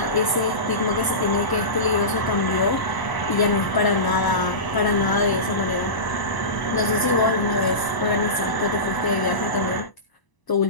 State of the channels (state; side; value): late; right; 1.0 ms